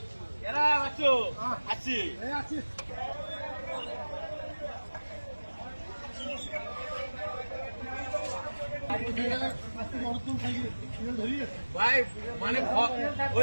এরা আছো আছি আছি ভাই মানে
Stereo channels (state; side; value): inverted; both; correlation -1.00